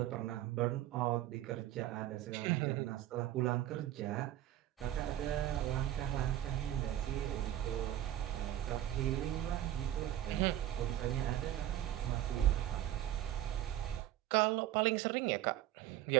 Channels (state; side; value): quieter; left; 13.1 dB